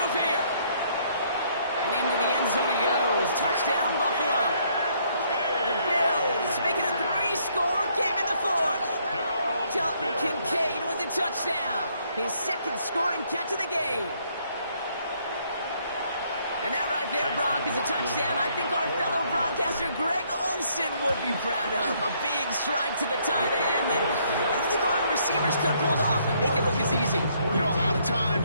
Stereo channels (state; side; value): inverted; both; correlation -0.68